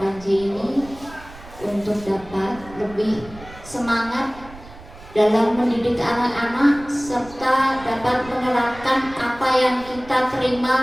ini untuk dapat lebih semangat dalam mendidik anak-anak serta dapat menerapkan apa yang kita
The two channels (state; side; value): noise; right; rumble, 19 dB below the sound